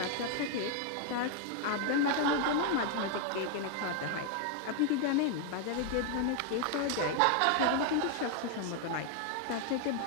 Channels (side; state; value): both; different; correlation 0.00